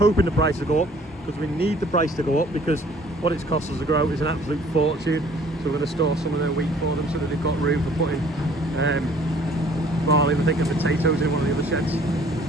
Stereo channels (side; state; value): both; normal; correlation 0.56